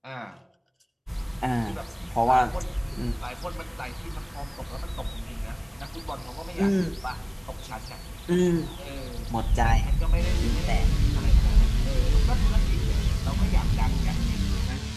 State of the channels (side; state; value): both; identical; correlation 1.00